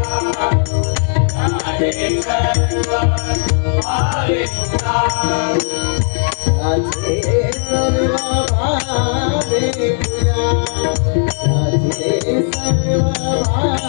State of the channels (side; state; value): right; silent; 69 dB below the other